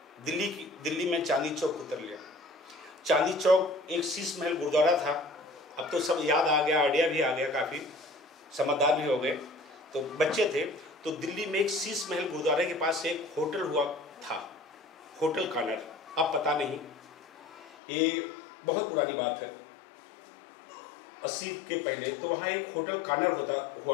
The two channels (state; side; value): drops out; right; at 17.7 s